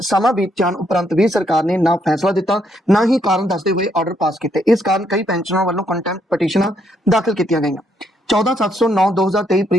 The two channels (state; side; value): normal; both; correlation 0.74